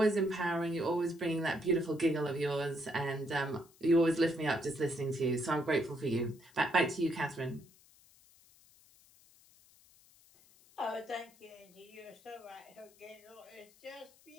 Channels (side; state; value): left; noise; hiss, 27 dB below the sound